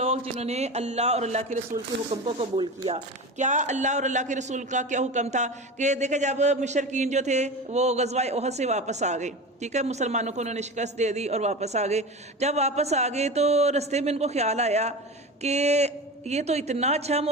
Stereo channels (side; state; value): both; normal; correlation 0.28